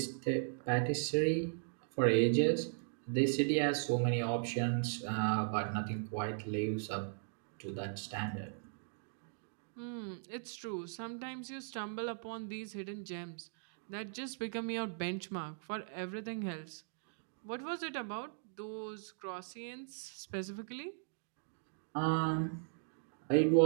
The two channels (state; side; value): silent; left; digital silence